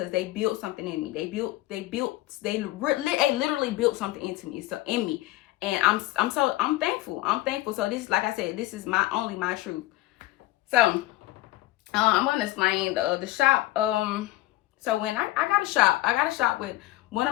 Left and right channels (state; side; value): quieter; right; 17.5 dB